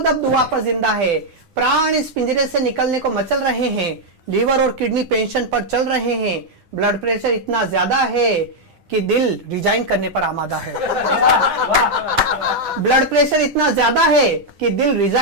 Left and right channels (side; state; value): left; late; 9.9 ms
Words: अब दुआ पर जिंदा है। प्राण इस पिंजरे से निकलने को मचल रहे हैं, लीवर और किडनी पेंशन पर चल रहे हैं, ब्लड प्रेशर इतना ज्यादा है कि दिल रिजाइन करने पर आमादा है। ब्लड प्रेशर इतना ज्यादा है कि दिल